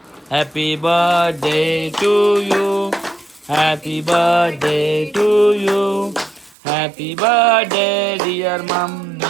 happy birthday to you. Happy birthday to you. Happy birthday dear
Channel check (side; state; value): left; drops out; at 6.6 s